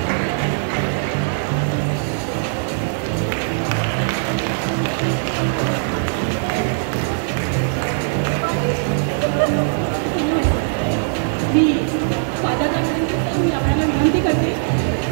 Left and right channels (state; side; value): silent; left; 63 dB below the other